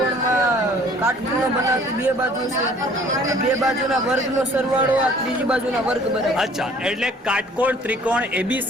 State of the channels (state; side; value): normal; both; correlation 0.54